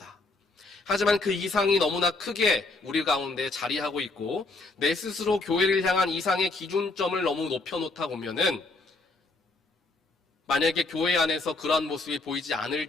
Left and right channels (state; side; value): quieter; right; 3.3 dB